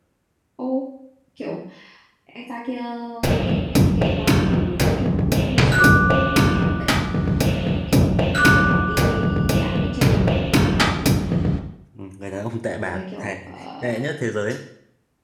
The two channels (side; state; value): both; identical; correlation 1.00